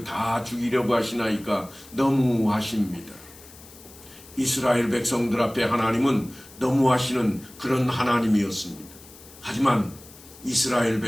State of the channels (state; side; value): noise; left; hiss, 21 dB below the sound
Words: 다 죽이려고 하시나이까? 너무하십니다. 이스라엘 백성들 앞에 하나님은 너무하시는 그런 하나님이었습니다. 하지만 이스라엘